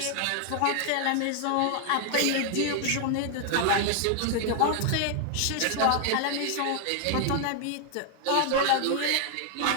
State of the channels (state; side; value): different; both; correlation 0.00